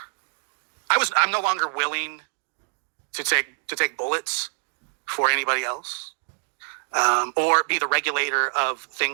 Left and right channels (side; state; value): left; silent; digital silence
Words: I'm no longer willing to take bullets for anybody else, or be the regulator of